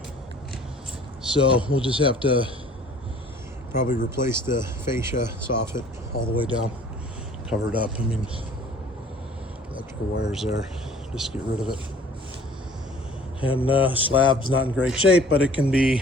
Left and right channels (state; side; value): normal; both; correlation 0.51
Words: So we'll just have to probably replace the fascia soffit all the way down, cover it up. I mean, electrical wires there, just get rid of it. And slab's not in great shape, but it can